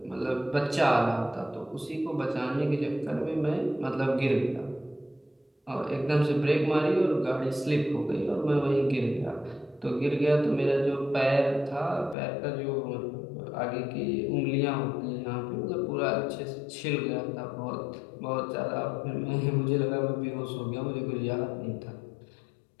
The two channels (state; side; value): drops out; right; at 12.2 s